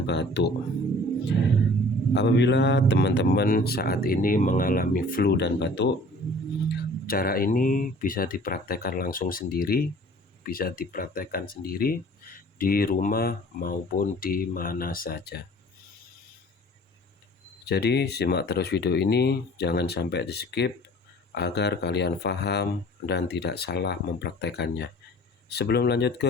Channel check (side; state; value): both; normal; correlation 0.49